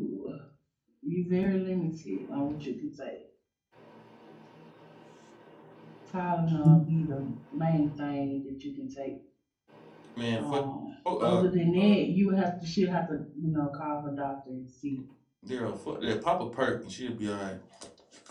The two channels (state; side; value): identical; both; correlation 1.00